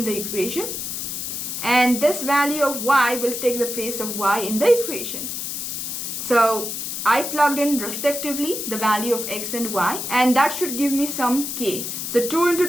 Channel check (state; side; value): noise; left; hiss, 5 dB below the sound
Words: the equation, and this value of y will take the place of y in the equation. So I plugged in respectively the value of x and y, and that should give me some k. So 2 into